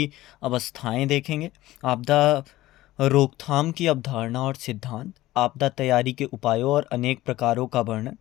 अवस्थाएं देखेंगे, आपदा रोकथाम की अवधारणा और सिद्धांत, आपदा तैयारी के उपायों और अनेक प्रकारों का वर्णन,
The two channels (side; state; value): right; quieter; 16.5 dB